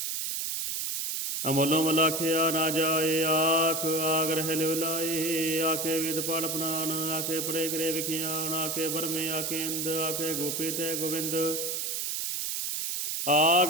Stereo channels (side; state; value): right; noise; hiss, 2 dB below the sound